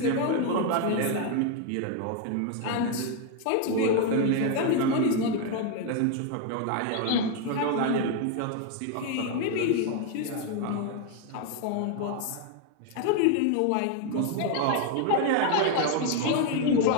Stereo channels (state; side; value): different; both; correlation 0.01